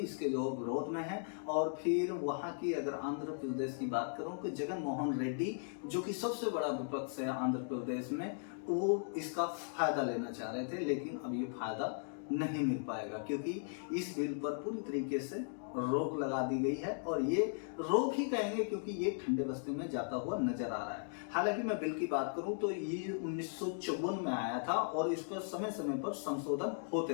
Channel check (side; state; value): right; silent; digital silence